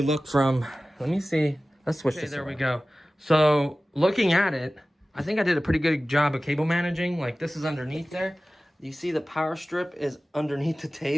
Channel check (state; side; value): normal; both; correlation 0.97